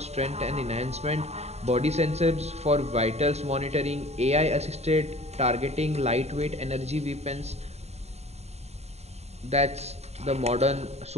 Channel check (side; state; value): left; late; 0.31 ms